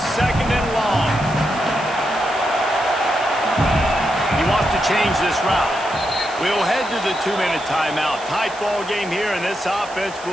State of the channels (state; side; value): noise; right; hiss, 18 dB below the sound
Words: 2nd and long. He wants to change this route. We'll head to the 2-minute timeout. Tight ball game here, and this offense